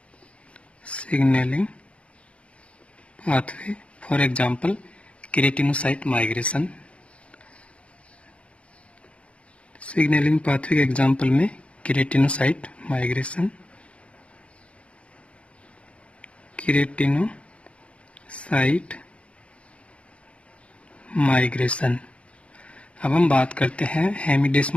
signaling pathway. For example keratinocyte migration. Signaling pathway के एग्जांपल में केराटिनोसाइट माइग्रेशन, केराटिनोसाइट माइग्रेशन। अब हम बात करते हैं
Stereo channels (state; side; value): late; right; 0.061 ms